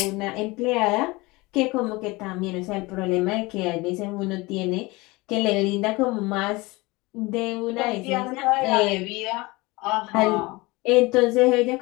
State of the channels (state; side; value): quieter; right; 23.0 dB